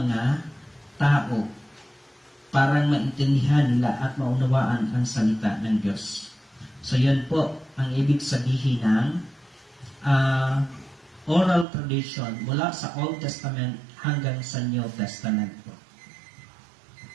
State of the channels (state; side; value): drops out; left; at 11.7 s